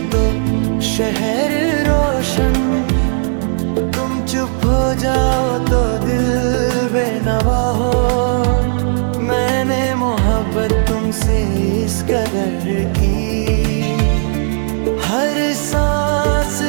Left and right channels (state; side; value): silent; left; 58 dB below the other